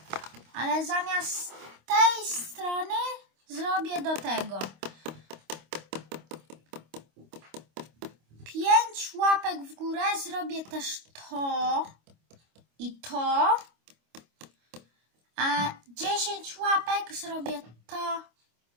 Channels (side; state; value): left; late; 25 ms